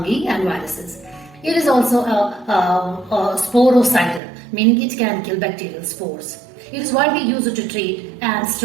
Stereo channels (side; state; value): left; drops out; at 4.2 s